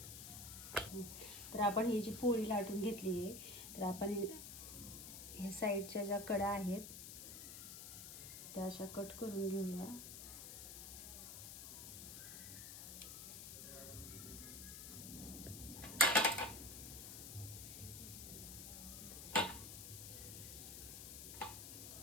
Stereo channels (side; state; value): left; noise; hiss, 9 dB below the sound